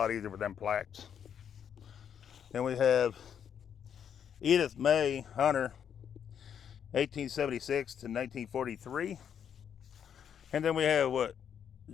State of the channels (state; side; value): quieter; right; 8.3 dB